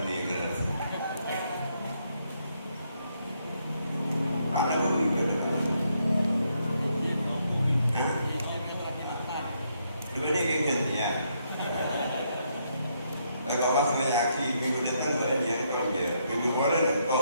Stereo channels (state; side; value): inverted; both; correlation -0.75